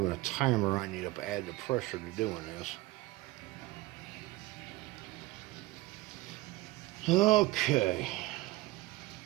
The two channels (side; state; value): left; quieter; 19.0 dB